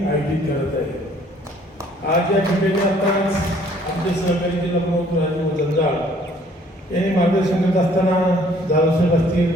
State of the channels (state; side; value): normal; both; correlation 0.59